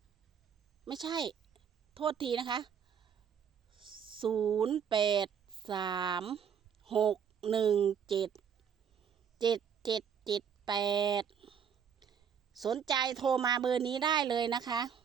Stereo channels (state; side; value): quieter; left; 7.6 dB